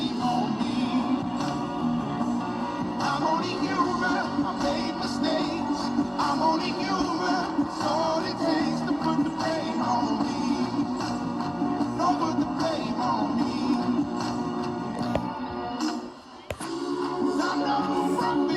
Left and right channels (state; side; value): identical; both; correlation 1.00